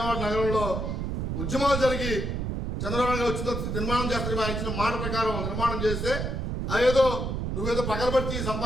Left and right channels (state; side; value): noise; right; rumble, 2 dB below the sound